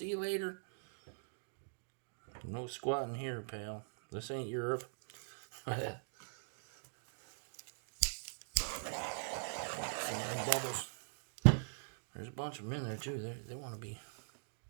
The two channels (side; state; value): left; silent; digital silence